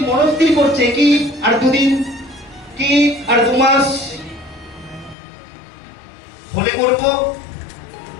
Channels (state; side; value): drops out; right; at 5.2 s